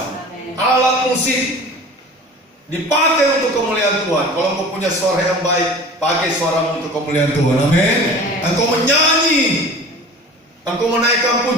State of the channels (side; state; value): both; normal; correlation 0.40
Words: Alat musik dipakai untuk kemuliaan Tuhan. Kalau engkau punya suara yang baik, pakai suaramu untuk kemuliaan Tuhan. Amin. Engkau menyanyi, engkau menaikkan